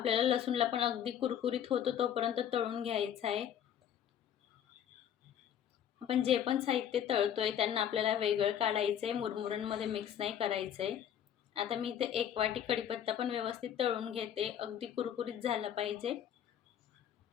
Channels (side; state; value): right; quieter; 9.6 dB